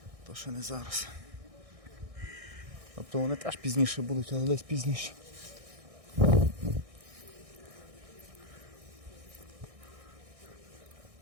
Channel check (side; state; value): left; late; 1.6 ms